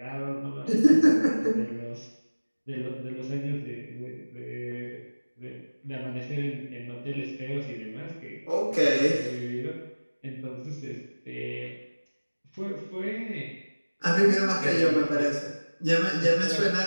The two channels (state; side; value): inverted; both; correlation -1.00